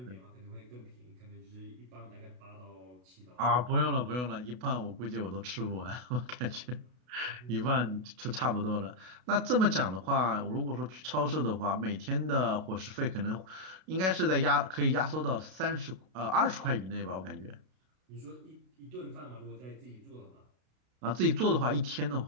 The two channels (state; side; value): late; left; 32 ms